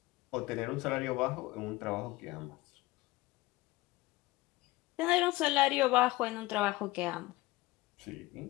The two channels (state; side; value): quieter; right; 19.8 dB